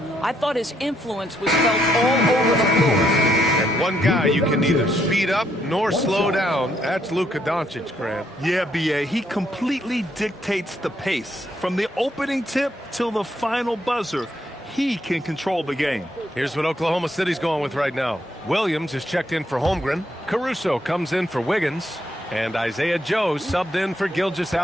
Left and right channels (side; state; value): both; normal; correlation 0.74